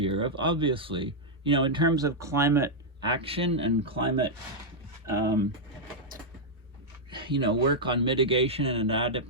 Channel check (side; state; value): both; normal; correlation -0.04